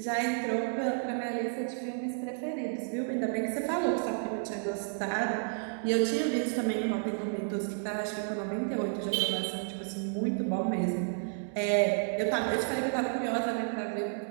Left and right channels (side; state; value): left; silent; digital silence